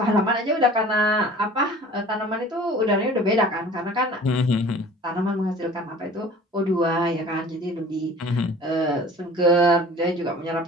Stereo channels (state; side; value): normal; both; correlation 0.45